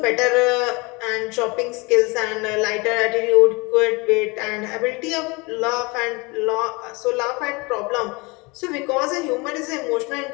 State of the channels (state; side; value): quieter; right; 26.7 dB